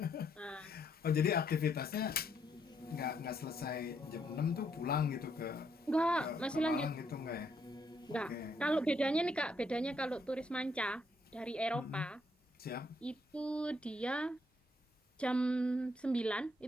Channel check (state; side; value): normal; both; correlation 0.73